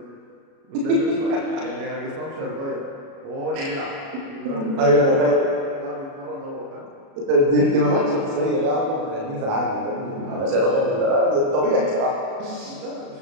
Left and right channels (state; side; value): late; left; 36 ms